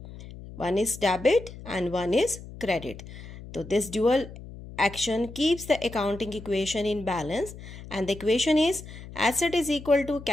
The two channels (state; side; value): noise; left; hum, 14 dB below the sound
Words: One is debit and one is credit. So this dual action keeps the accounting equation in balance, and the equation is asset is equal to